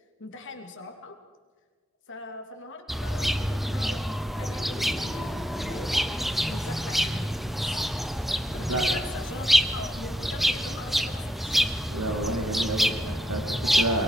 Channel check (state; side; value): normal; both; correlation 0.80